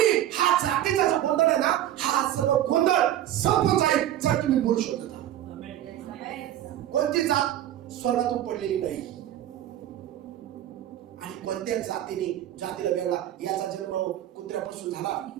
हा जातीचा जो गोंधळ आहे ना, हा सर्व गोंधळ संपून जाईल जर तुम्ही बोलू शकता. कोणती जात स्वर्गातून पडलेली नाही. आणि कोणत्या जातीला वेगळा, याचा जन्म कुत्र्यापासून झाला,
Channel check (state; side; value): quieter; left; 12.3 dB